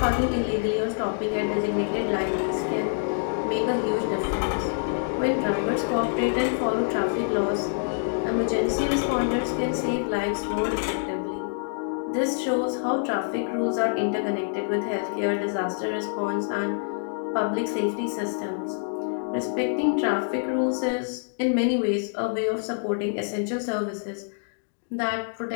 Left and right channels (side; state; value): right; silent; digital silence